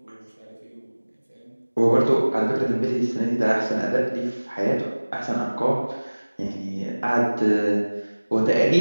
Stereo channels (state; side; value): inverted; both; correlation -1.00